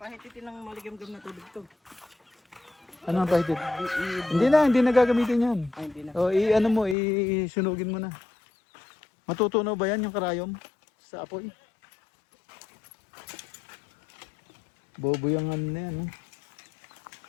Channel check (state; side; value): drops out; right; at 7.0 s